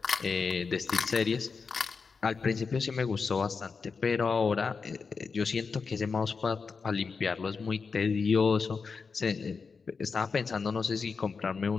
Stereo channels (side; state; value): right; quieter; 5.1 dB